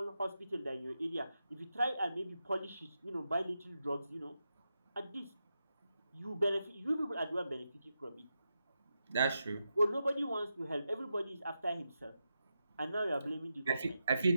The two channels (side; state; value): both; inverted; correlation -0.88